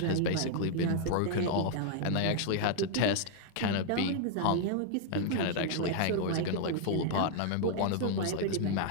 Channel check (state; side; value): different; both; correlation 0.00